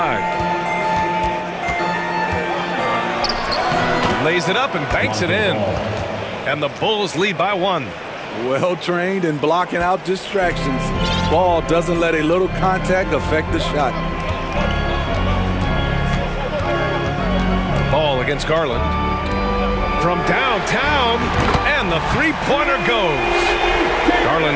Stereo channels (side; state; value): both; identical; correlation 1.00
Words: Lays it up and banks it in. And the Bulls lead by 1. Well trained in blocking out distractions. Ball doesn't let a little contact affect the shot. Ball against Garland. From downtown, and the three-pointer goes.